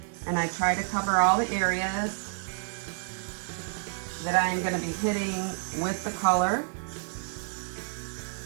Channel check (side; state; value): left; silent; digital silence